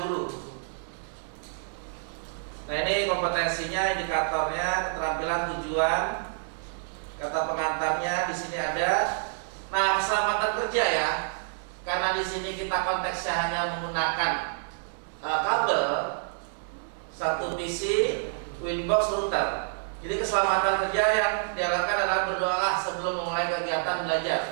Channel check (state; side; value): silent; left; 59 dB below the other